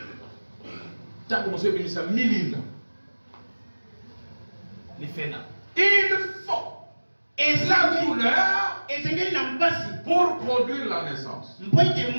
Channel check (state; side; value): inverted; both; correlation -1.00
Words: tango moso ebimisa milinga. Les fena. Il faut la douleur Esengeli na mpasi. pour produire la naissance. Mpo ete